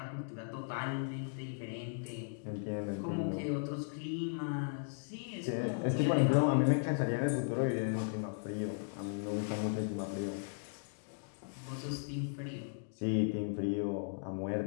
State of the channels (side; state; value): right; silent; digital silence